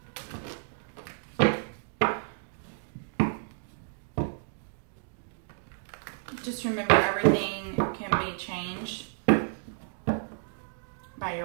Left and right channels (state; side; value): silent; left; digital silence